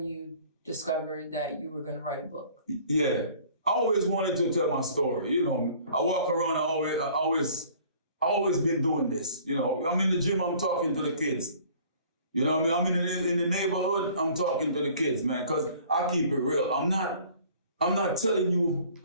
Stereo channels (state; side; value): inverted; both; correlation -0.52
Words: you discovered that you were going to write a book. Yeah. I always wanted to tell my story. I walk around, I always been doing this. I'm in the gym, I'm talking to the kids. You know what I mean? I'm in the neighborhood, I'm talking to the kids, man, because I keep it real. I'm not telling you